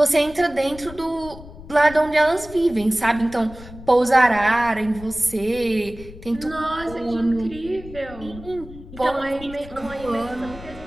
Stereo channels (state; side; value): noise; left; rumble, 16 dB below the sound